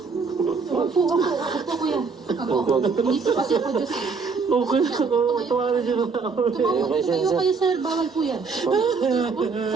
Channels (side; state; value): left; quieter; 4.9 dB